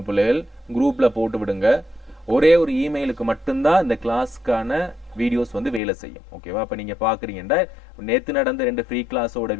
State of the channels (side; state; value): right; drops out; at 5.8 s